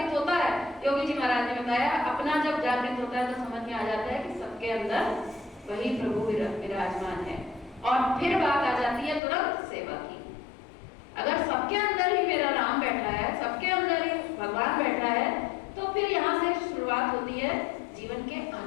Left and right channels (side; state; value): right; drops out; at 9.2 s